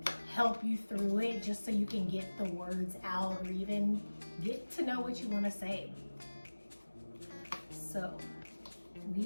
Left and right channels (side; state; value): both; inverted; correlation -1.00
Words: help you through it, just so you can get the words out or even get to know what you want to say. So